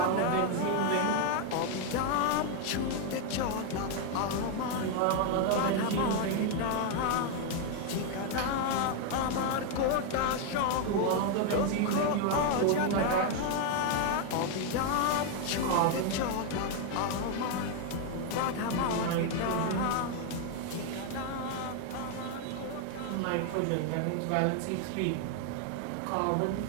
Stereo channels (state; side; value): different; both; correlation 0.00